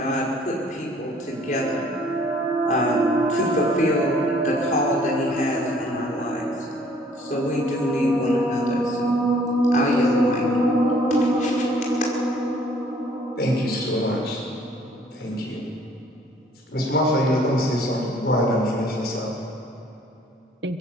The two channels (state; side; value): normal; both; correlation 0.59